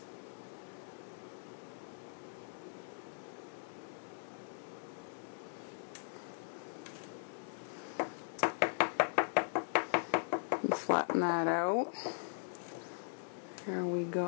And flatten that out. There we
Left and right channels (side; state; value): right; silent; digital silence